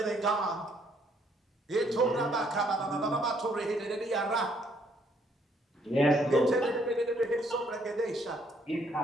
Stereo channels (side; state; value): both; normal; correlation 0.68